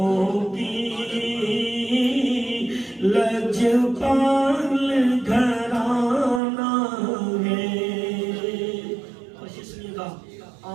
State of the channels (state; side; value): drops out; left; at 6.4 s